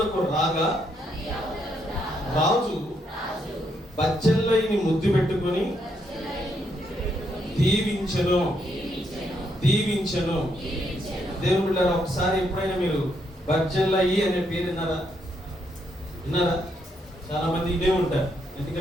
రాగా రాజు బచ్చెల్లైని ముద్దు పెట్టుకొని దీవించెను. దేవుని బిడ్డలారా, ఒకసారి ఎప్పుడైనా మీరు బచ్చెల్లయి అనే పేరు విన్నారా? చాలా మంది ఇదే ఉంటారు.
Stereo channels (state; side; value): normal; both; correlation 0.76